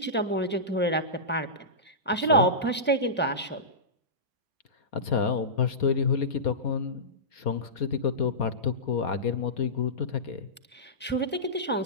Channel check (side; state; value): both; normal; correlation -0.18